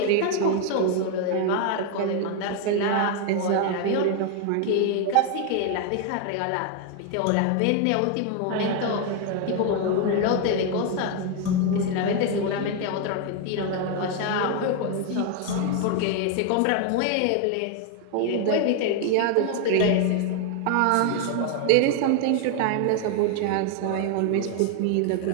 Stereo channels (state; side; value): different; both; correlation 0.01